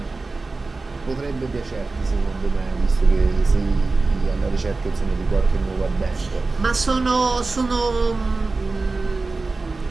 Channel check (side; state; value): left; quieter; 3.7 dB